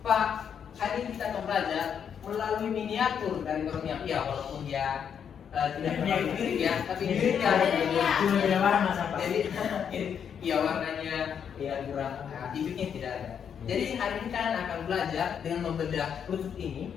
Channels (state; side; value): quieter; right; 7.8 dB